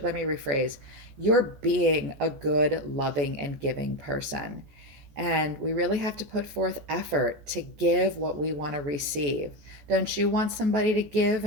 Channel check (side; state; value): left; late; 14 ms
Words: let me rephrase. You're being a good, loving, and giving person. And we really have to put forth effort to give what we want to receive. Don't you want somebody to give